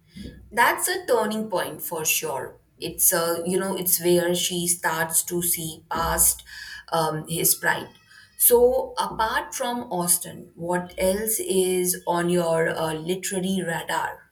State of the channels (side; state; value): both; identical; correlation 1.00